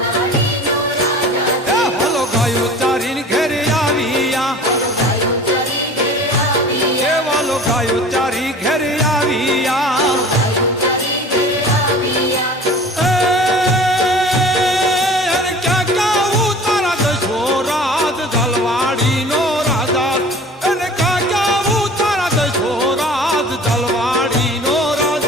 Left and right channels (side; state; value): both; normal; correlation 0.42